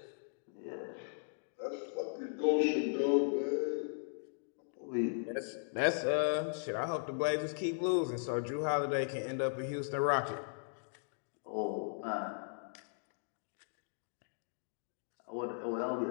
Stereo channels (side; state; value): right; silent; digital silence